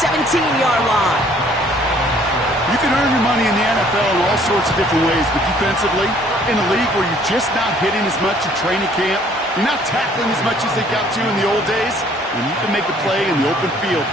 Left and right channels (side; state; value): both; normal; correlation 0.59